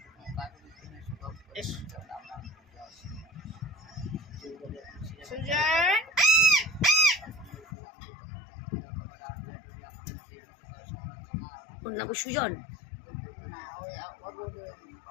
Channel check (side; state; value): right; drops out; at 7.7 s